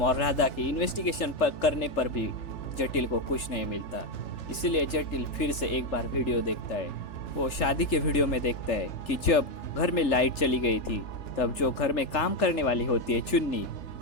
और राधा की इन्वेस्टिगेशन करने पर भी जटिल को कुछ नहीं मिलता, इसलिए जटिल फिर से एक बार वीडियो देखता है। वो शादी के वीडियो में देखता है कि जब घर में लाइट चली गई थी तब जो घर में काम करने वाली होती है चुन्नी,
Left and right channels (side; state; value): right; late; 3.4 ms